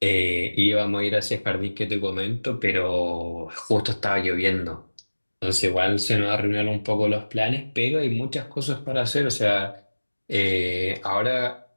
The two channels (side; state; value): both; inverted; correlation -1.00